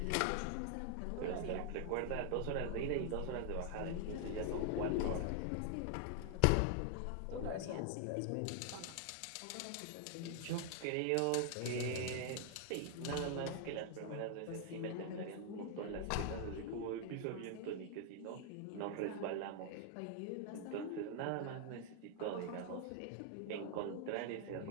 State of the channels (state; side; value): different; both; correlation 0.00